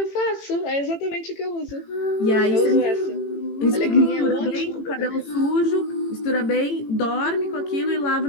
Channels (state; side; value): late; right; 18 ms